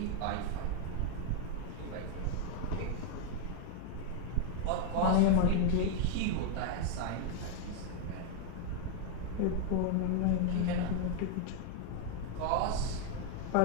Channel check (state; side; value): different; both; correlation 0.00